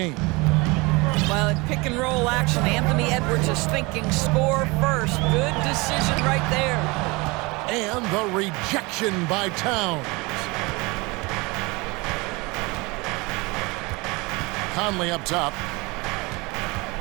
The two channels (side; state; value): left; quieter; 25.3 dB